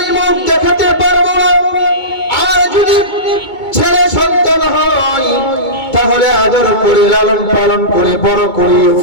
মুখ দেখাতে পারবো না, আর যদি ছেলে সন্তান হয় তাহলে আদর করে লালন পালন করে বড় করিও।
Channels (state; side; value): late; right; 2.2 ms